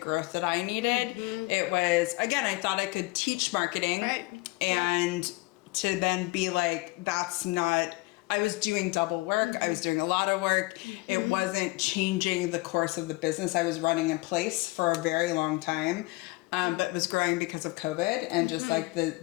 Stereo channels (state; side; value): quieter; right; 23.0 dB